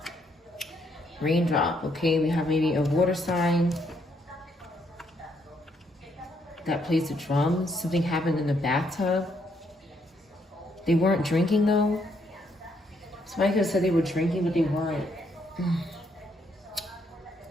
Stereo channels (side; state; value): both; normal; correlation 0.73